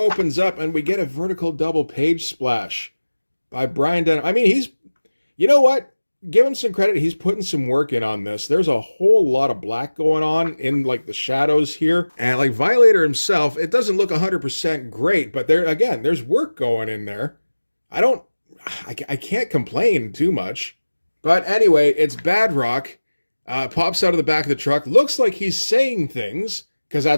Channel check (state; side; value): inverted; both; correlation -1.00